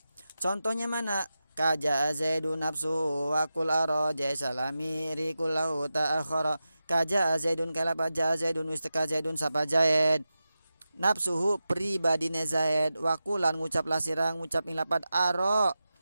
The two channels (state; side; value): inverted; both; correlation -0.92